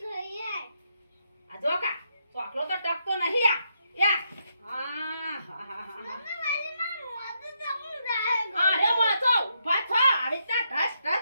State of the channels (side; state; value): both; inverted; correlation -0.79